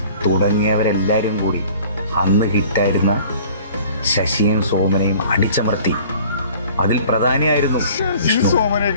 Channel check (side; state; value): both; inverted; correlation -0.49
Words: തുടങ്ങിയവരെല്ലാവരും കൂടി അന്ന് ഹിറ്റായിരുന്ന ശശിയും സോമനെയും അടിച്ചമർത്തി. അതിൽ പ്രധാനിയായിരുന്നു ഈ